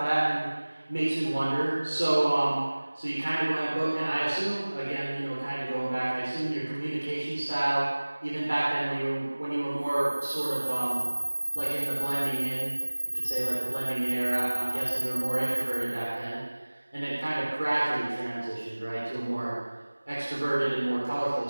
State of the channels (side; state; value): both; inverted; correlation -1.00